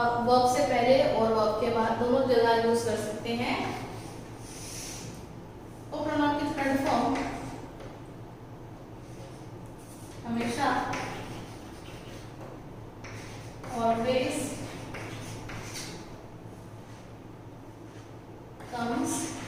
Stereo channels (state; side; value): identical; both; correlation 1.00